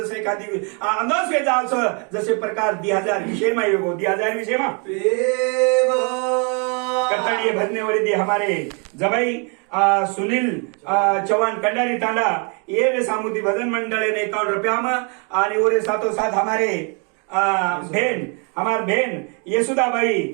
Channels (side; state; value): left; quieter; 36.5 dB